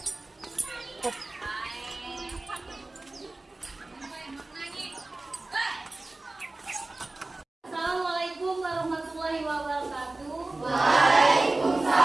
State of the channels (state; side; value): quieter; left; 3.0 dB